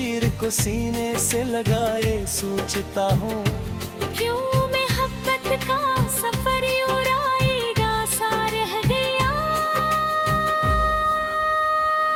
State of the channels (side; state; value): both; identical; correlation 1.00